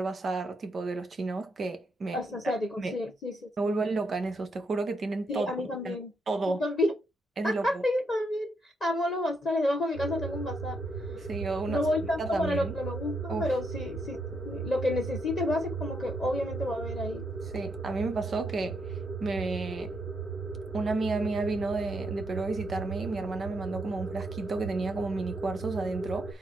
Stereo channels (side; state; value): both; normal; correlation 0.78